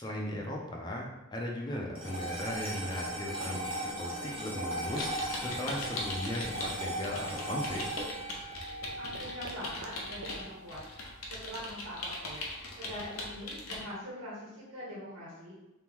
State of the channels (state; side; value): normal; both; correlation 0.19